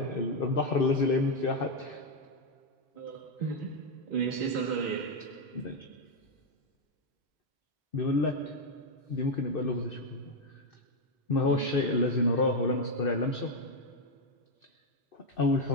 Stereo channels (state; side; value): normal; both; correlation 0.04